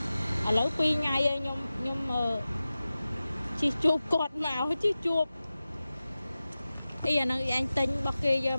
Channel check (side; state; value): both; inverted; correlation -0.95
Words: ឡូវ2ថ្ងៃហើយខ្ញុំជីជួបគាត់មកជីជួបអីអាហ្នឹងអញទិញរបស់គេយក